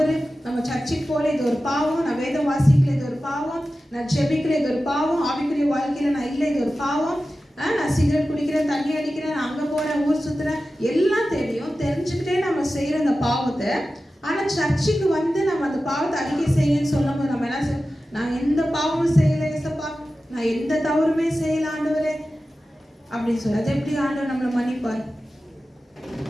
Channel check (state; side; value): normal; both; correlation 0.94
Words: நம்ம சர்ச்சுக்கு போல இது ஒரு பாவம், நான் வேதம் வாசிக்கல இது ஒரு பாவம், நான் ஜெபிக்கல இது ஒரு பாவம், ஆவிக்குரிய வாழ்க்கையில நான் இல்லை இது ஒரு பாவம், நான் சிகரெட் குடிக்கிறேன், தண்ணி அடிக்கிறேன், நான் அங்க போறேன், ஊர் சுத்துறேன், எல்லாம் தெரியும். தெரிஞ்சுக்கிட்டே நம்ம செய்யற அந்த பாவத்தை, ஆனா சர்ச்சுக்கு வந்து நம்ம அந்த பாவத்தை அறிக்கை செய்யன்னு சொல்லும் போது நம்ம என்ன செய்ய, நான் எந்த பாவமும் செய்யல ஏசப்பா, நான் எந்த தவறுமே செய்யல ஆண்டவரே அப்படின்னு சொல்லி, அது எப்படி ஆண்டவர் நம்மளை மன்னிப்பார்?